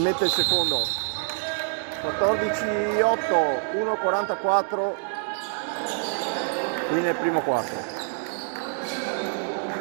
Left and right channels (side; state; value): left; silent; digital silence